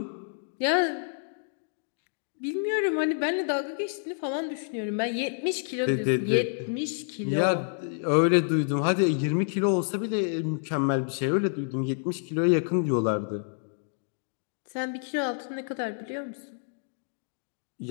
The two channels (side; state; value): right; silent; digital silence